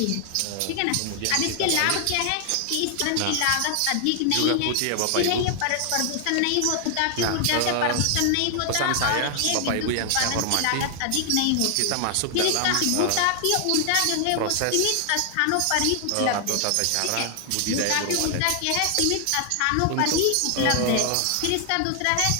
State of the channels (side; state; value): both; different; correlation 0.00